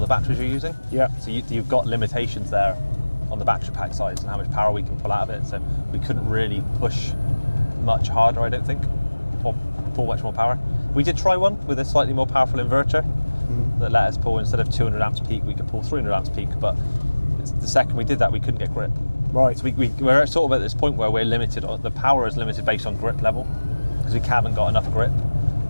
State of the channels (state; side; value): inverted; both; correlation -1.00